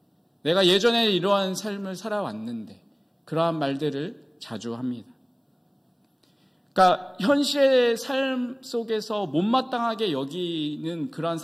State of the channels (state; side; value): identical; both; correlation 1.00